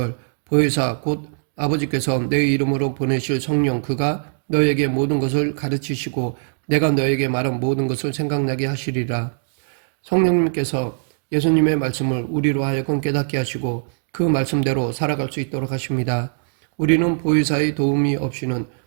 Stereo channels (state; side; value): silent; left; digital silence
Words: 보혜사 곧 아버지께서 내 이름으로 보내실 성령 그가 너에게 모든 것을 가르치시고 내가 너에게 말한 모든 것을 생각나게 하시리라. 성령님께서 예수님의 말씀을 우리로 하여금 깨닫게 하시고 그 말씀대로 살아갈 수 있도록 하십니다. 우리는 보혜사의 도움이 없이는